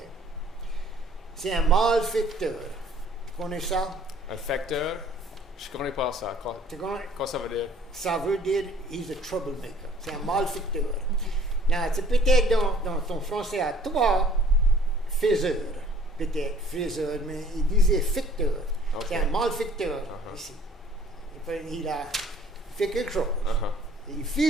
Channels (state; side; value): normal; both; correlation 0.55